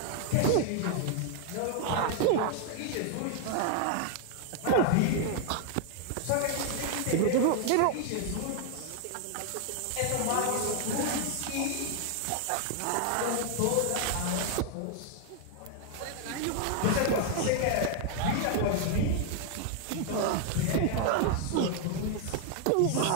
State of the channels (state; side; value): different; both; correlation 0.00